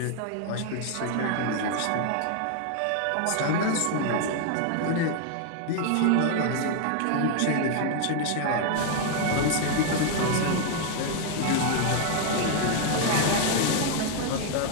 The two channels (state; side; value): different; both; correlation 0.00